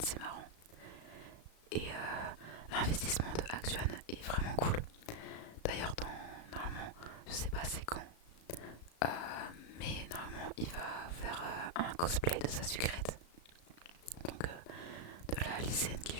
marrant. Et l'investissement de Actuan est vraiment cool. D'ailleurs normalement, je sais pas c'est quand, mais normalement il va faire un cosplay de sa sucrète. Donc de la lycéenne qui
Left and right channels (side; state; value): right; late; 35 ms